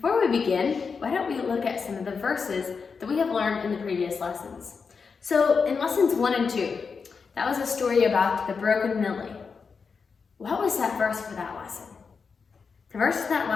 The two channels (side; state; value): right; quieter; 5.3 dB